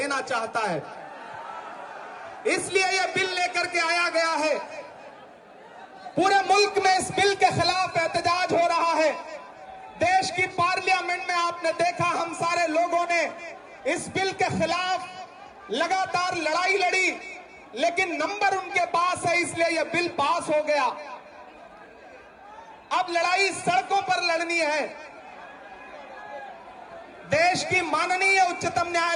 चाहता है। इसलिए यह बिल लेकर के आया गया है। पूरे मुल्क में इस बिल के खिलाफ एहतजाज हो रहा है। देश की पार्लियामेंट में आपने देखा, हम सारे लोगों ने इस बिल के खिलाफ लगातार लड़ाई लड़ी, लेकिन नंबर उनके पास है, इसलिए यह बिल पास हो गया। अब लड़ाई सड़कों पर लड़नी है। देश की माननीय उच्चतम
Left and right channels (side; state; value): both; identical; correlation 1.00